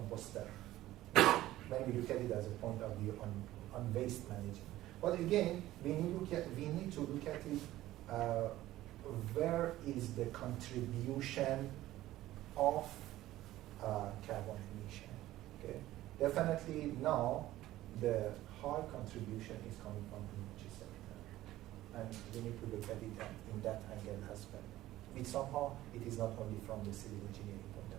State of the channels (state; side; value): quieter; left; 15.3 dB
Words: When we look at it as a point of view on waste management. But again, we need to look at it, where is the contribution of carbon emission. Okay? Definitely now the high contribution is coming from the energy sector. And we need to look at it in that angle as well. Which somehow it is not only from the civil engineering point